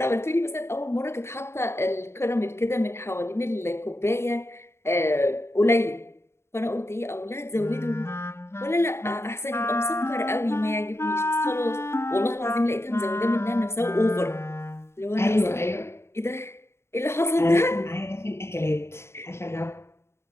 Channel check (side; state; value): right; late; 0.13 ms